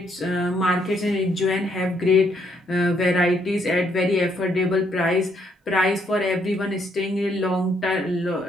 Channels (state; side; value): normal; both; correlation 0.72